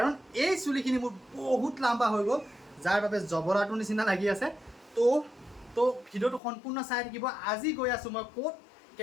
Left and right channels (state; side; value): drops out; right; at 6.4 s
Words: এই চুলিখিনি মোৰ বহুত লাম্বা হৈ গ'ল, যাৰ বাবে জবৰাটোৰ নিচিনা লাগি আছে। তো ভিডিঅ'টো সম্পূৰ্ণ চাই থাকিব। আজি গৈ আছোঁ মই ক'ত,